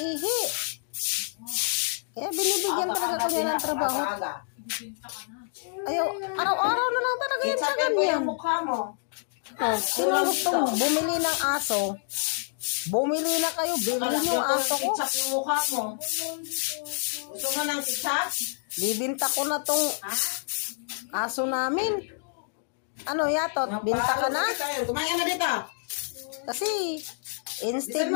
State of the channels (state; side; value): silent; right; digital silence